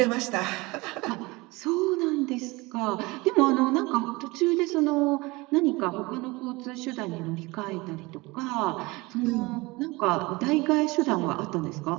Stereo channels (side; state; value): left; quieter; 23.3 dB